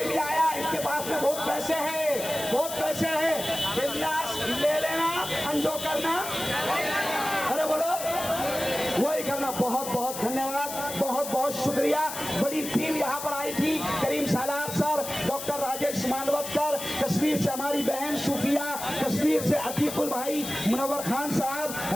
भी आया, इनके पास में बहुत पैसे हैं, बहुत पैसे हैं, बिंदास ले लेना, अंजो करना, अरे बोलो वही करना। बहुत बहुत धन्यवाद, बहुत बहुत शुक्रिया। बड़ी टीम यहाँ पर आई थी, करीम सालार सर, डॉक्टर राजेश मानवतकर, कश्मीर से हमारी बहन सूफिया, कश्मीर से अतीकुल भाई, मुनव्वर खान साहब,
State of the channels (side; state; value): left; noise; hiss, 8 dB below the sound